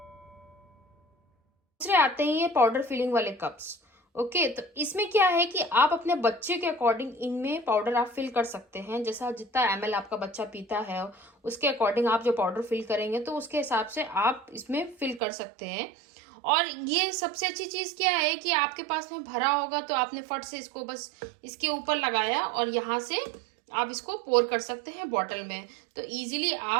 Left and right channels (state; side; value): drops out; left; at 15.2 s